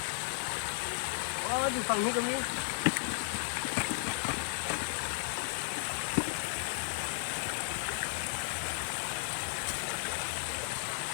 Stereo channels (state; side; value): silent; right; digital silence